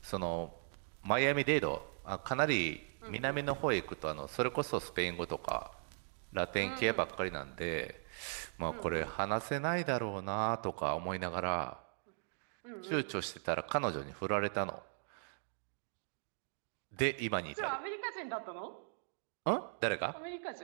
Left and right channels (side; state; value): left; silent; digital silence